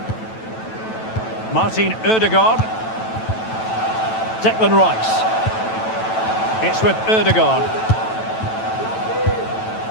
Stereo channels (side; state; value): right; late; 9.1 ms